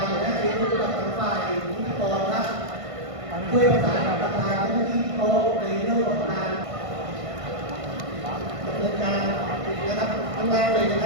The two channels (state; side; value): late; left; 1.5 ms